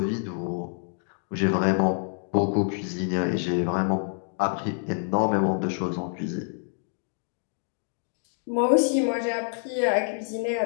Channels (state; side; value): silent; right; 60 dB below the other